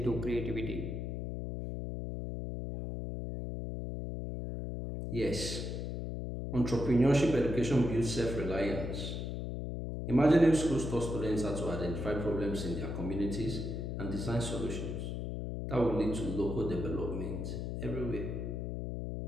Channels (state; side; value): noise; left; hum, 4 dB below the sound